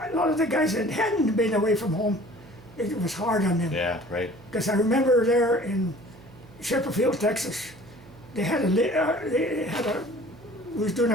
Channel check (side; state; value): right; noise; hum, 22 dB below the sound